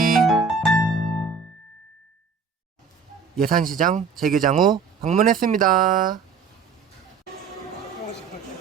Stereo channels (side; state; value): left; quieter; 5.4 dB